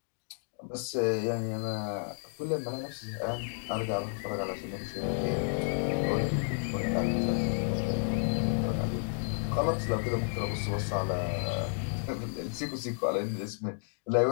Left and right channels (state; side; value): silent; right; digital silence